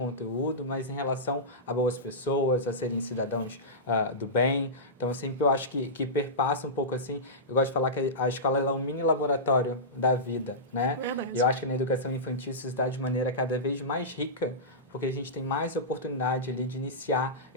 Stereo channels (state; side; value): normal; both; correlation -0.17